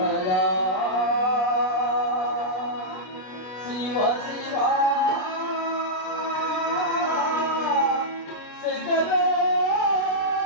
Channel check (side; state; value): right; late; 33 ms